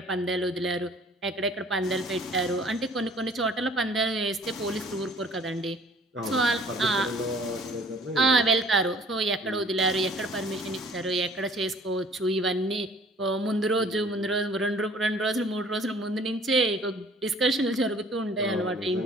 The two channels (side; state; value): both; normal; correlation 0.53